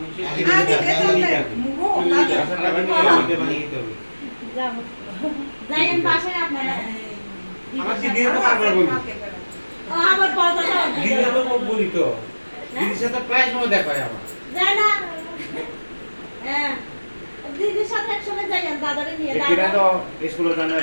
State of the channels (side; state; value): both; inverted; correlation -1.00